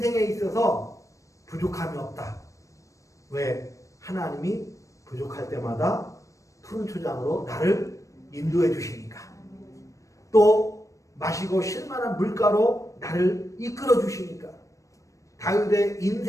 있어서 부족함이 없다. 왜? 하나님이 부족할 때마다 푸른 초장으로 나를 인도해 주시니까. 또 마시고 쉴만한 물가로 나를 이끌어 주시니까. 다윗의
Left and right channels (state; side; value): late; right; 0.16 ms